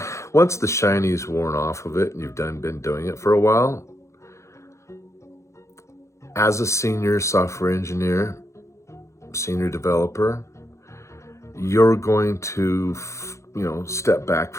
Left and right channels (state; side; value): late; right; 0.14 ms